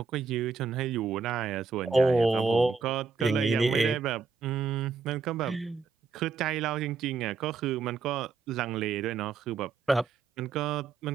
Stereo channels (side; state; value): left; quieter; 4.9 dB